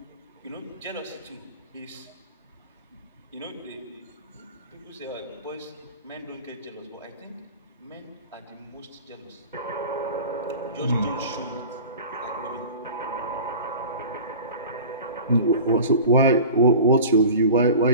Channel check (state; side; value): inverted; both; correlation -0.38